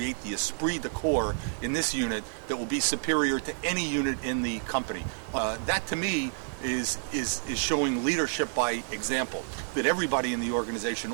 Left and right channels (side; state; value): left; silent; digital silence